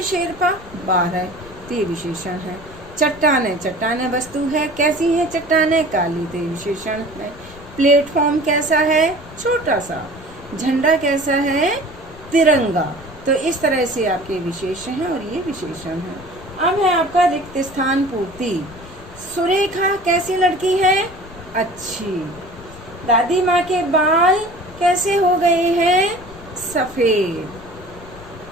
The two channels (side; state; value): left; noise; rumble, 19 dB below the sound